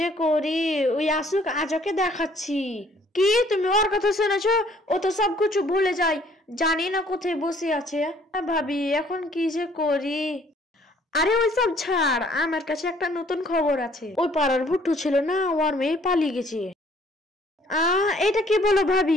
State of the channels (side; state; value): both; normal; correlation 0.60